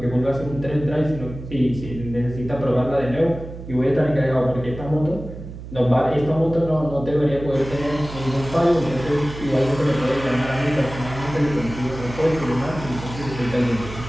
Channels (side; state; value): right; noise; hum, 12 dB below the sound